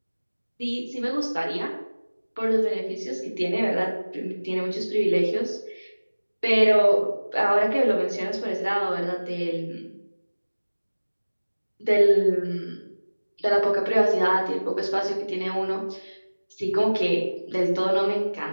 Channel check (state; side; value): inverted; both; correlation -1.00